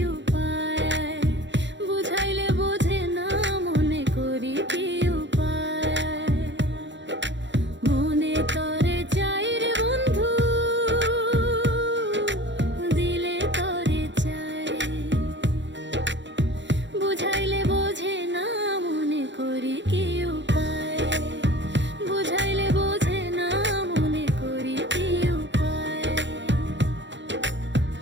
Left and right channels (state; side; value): late; left; 0.53 ms